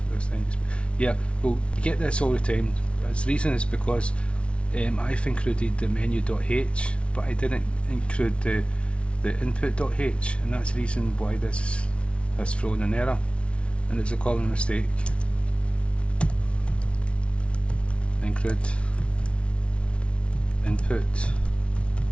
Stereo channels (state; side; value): late; right; 0.060 ms